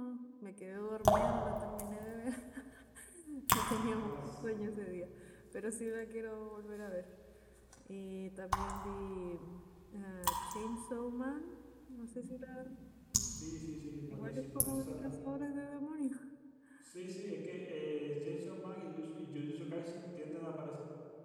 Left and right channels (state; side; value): identical; both; correlation 1.00